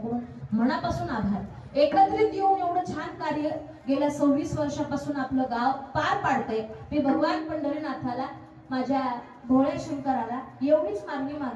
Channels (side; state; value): both; identical; correlation 1.00